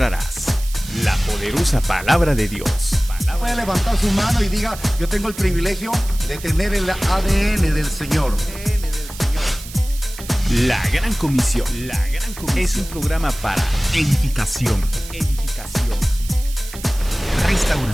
la poderosa palabra de Dios. Puede levantar su mano y diga: yo tengo el privilegio de tener el ADN del Señor. La Gran Comisión. Es un programa para edificación,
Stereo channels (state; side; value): noise; right; hiss, 15 dB below the sound